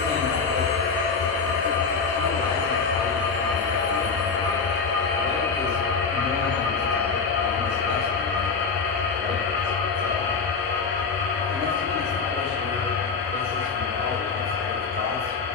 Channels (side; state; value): right; quieter; 5.1 dB